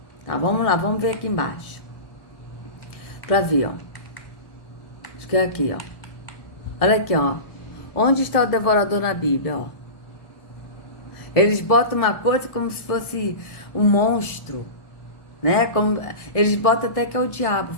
Tá, vamos lá, vamos ver aqui embaixo. Pra ver, ó. Acho que é aqui, ó. Olha aqui, ó. Onde está o devorador na Bíblia, ó? Eles botam uma coisa como se fosse um monstro, né? Eles botam até que é o diabo.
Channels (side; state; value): right; late; 1.2 ms